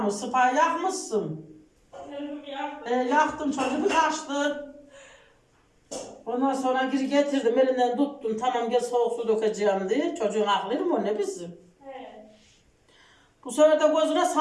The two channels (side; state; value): both; identical; correlation 1.00